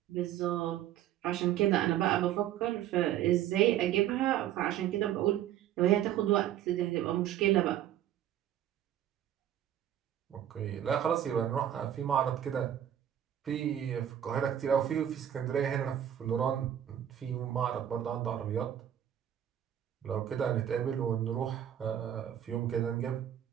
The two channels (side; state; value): left; quieter; 10.9 dB